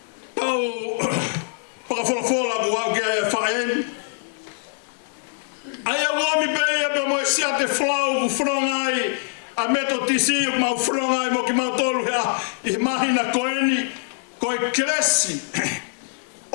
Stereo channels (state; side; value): silent; right; digital silence